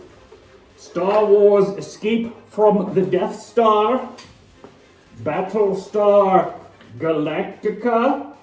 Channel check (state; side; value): identical; both; correlation 1.00